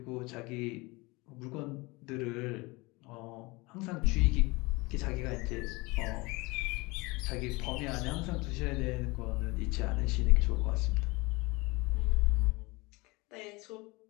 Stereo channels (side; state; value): right; quieter; 24.4 dB